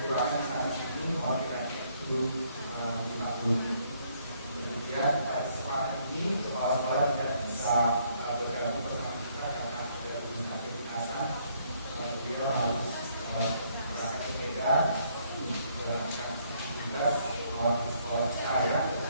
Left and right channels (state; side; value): inverted; both; correlation -0.68